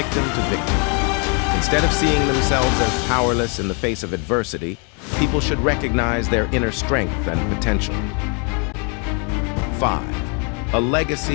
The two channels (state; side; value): quieter; right; 36.3 dB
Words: to victim. Instead of seeing themselves as powerless in the face of adversity, people should recognize their inner strength and potential. 5. A